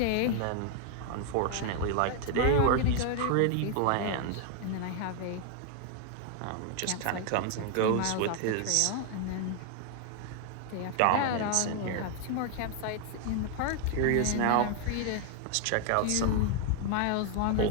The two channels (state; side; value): different; both; correlation 0.00